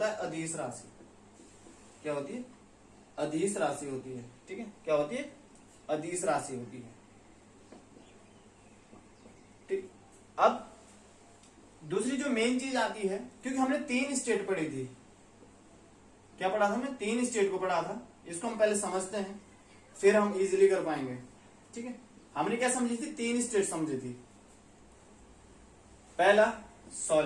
है अदिश राशि। क्या होती है? अदिश राशि होती है। ठीक है, क्या होती है? अदिश राशि होती है। ठीक, अब दूसरी जो मेन चीज आती है, क्योंकि हमने 3 स्टेट पढ़ी थी, क्या पढ़ा था हमने? 3 स्टेट को पढ़ा था। इसको हम पहले समझते हैं, फिर हम इजीली कर पाएंगे। ठीक है, हमने क्या समझी थी? 3 स्टेट समझी थी। पहला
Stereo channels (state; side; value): identical; both; correlation 1.00